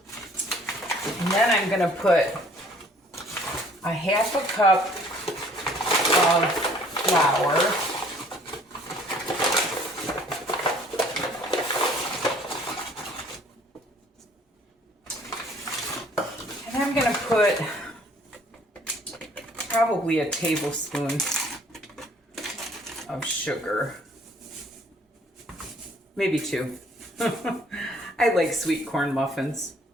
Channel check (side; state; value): both; normal; correlation 0.57